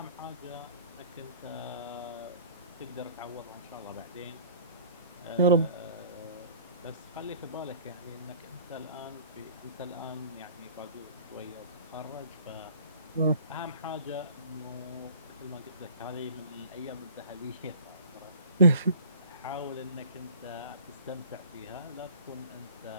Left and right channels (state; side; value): inverted; both; correlation -0.48